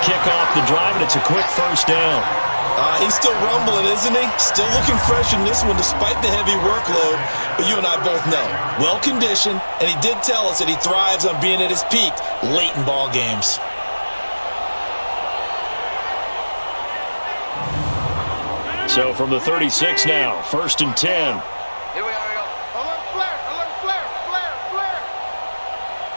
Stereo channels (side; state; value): both; inverted; correlation -1.00